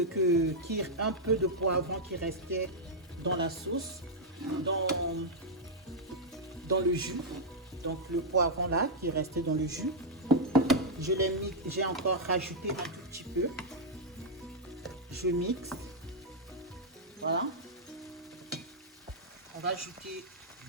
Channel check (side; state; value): both; normal; correlation -0.05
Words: un peu de poivron qui restait dans la sauce, dans le jus. Donc le poivron là qui restait dans le jus, j'ai encore rajouté un tout petit peu. Je mixe. Voilà. On va ajouter